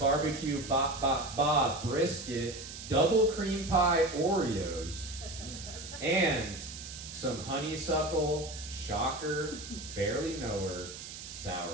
Bob brisket, double cream pie Oreos, and some honeysuckle, shocker, barely knower,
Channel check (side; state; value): right; noise; hiss, 11 dB below the sound